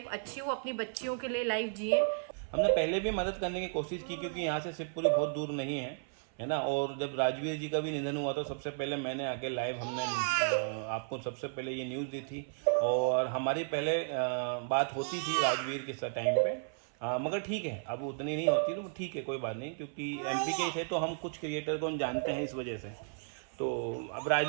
अच्छी हो, अपनी बच्चियों के लिए लाइफ जिए। हमने पहले भी मदद करने की कोशिश की, क्योंकि यहाँ से शिवपुरी बहुत दूर नहीं है ना। और जब राजवीर जी का भी निधन हुआ तो सबसे पहले मैंने आके लाइव, हमने आपको सबसे पहले ये न्यूज़ दी थी, और हमारी पहले बात होती थी राजवीर के टाइम पे, मगर ठीक है, अब उतनी नहीं होती, तो ठीक है, कोई बात नहीं, क्योंकि एमपी के थे तो हम कुछ क्रिएटर को जानते हैं इस वजह से। तो अब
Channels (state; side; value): silent; left; 55 dB below the other